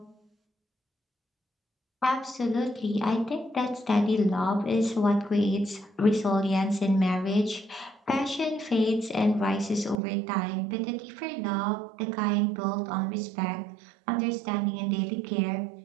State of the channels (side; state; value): left; drops out; at 10.0 s